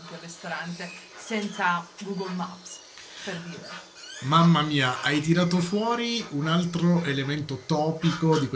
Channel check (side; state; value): both; identical; correlation 1.00